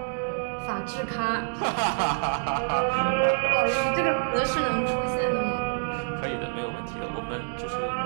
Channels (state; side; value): silent; left; digital silence